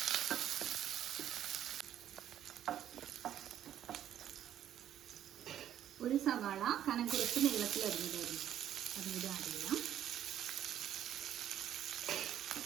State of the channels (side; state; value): left; quieter; 10.9 dB